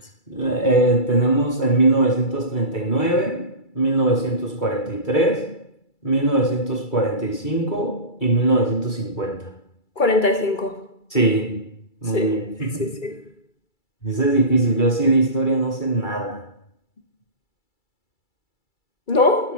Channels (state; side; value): late; right; 2.3 ms